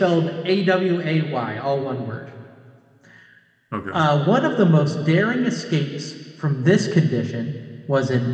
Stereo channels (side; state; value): both; identical; correlation 1.00